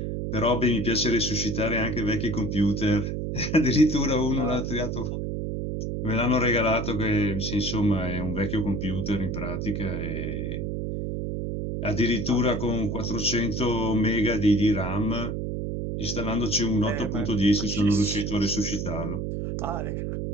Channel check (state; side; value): noise; right; hum, 3 dB below the sound